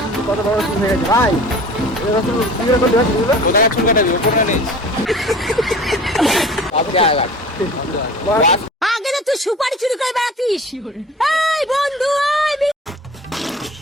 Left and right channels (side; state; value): both; normal; correlation 0.42